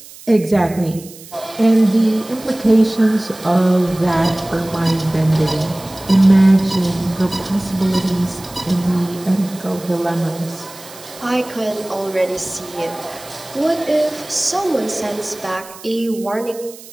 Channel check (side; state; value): right; noise; hiss, 18 dB below the sound